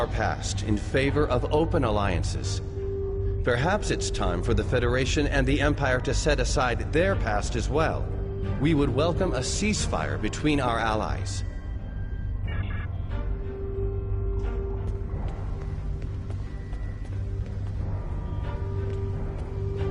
past in favor of open alliances. Perhaps it's time for the Federation and the Empire to set aside their past as well. We would welcome a ceasefire between our allies.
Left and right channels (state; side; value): identical; both; correlation 1.00